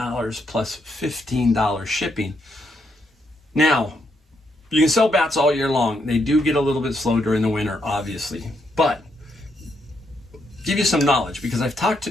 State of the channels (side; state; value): both; normal; correlation 0.78